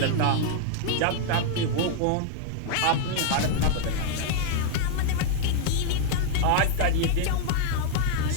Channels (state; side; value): different; both; correlation 0.00